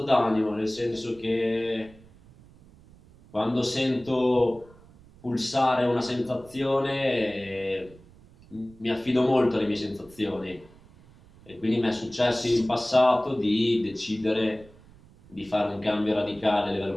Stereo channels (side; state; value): right; noise; rumble, 25 dB below the sound